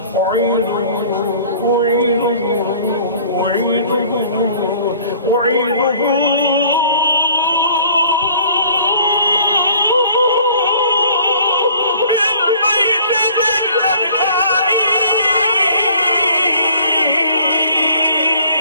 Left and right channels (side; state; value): both; inverted; correlation -0.52